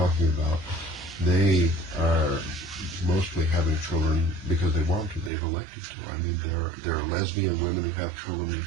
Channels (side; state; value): left; drops out; at 5.3 s